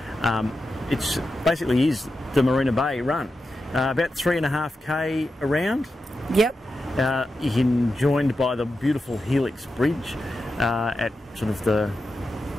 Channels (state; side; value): normal; both; correlation 0.89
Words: It's basically is the Marina Bay run, about 3.5k around. Yep. You can joined by the beautiful Helix Bridge at sort of the